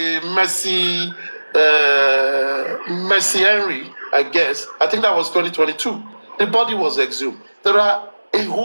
Mercy Henry, I guess. I think that was 2022. The body was exhumed. There are a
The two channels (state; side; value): inverted; both; correlation -1.00